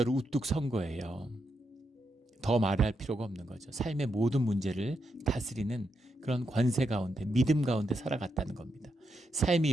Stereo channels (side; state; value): both; normal; correlation 0.83